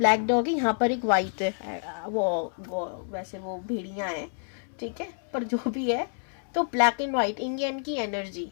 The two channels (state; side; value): silent; right; 59 dB below the other